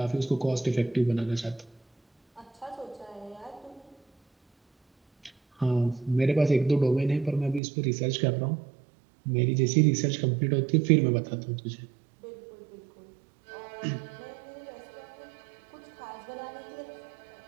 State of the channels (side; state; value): left; drops out; at 7.6 s